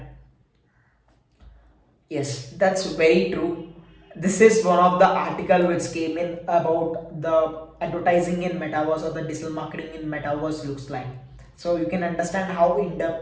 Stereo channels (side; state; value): both; identical; correlation 1.00